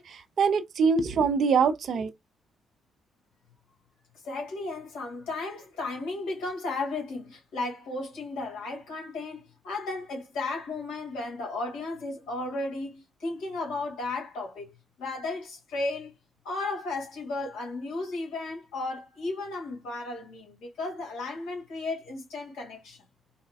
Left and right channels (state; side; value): normal; both; correlation 0.66